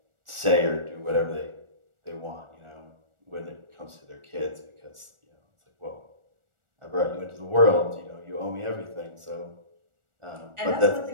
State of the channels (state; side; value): late; left; 1.4 ms